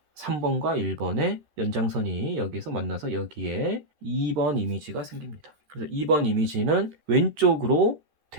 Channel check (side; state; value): left; late; 13 ms